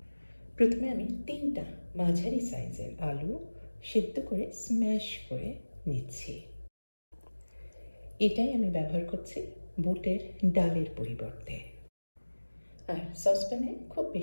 প্রথমে আমি 3টা মাঝারি সাইজের আলু সেদ্ধ করে স্ম্যাশ করে নিচ্ছি। এটাই আমি ব্যবহার করছি বুটের ডালের পরিবর্তে। আর সসপ্যানে খুব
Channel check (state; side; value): inverted; both; correlation -1.00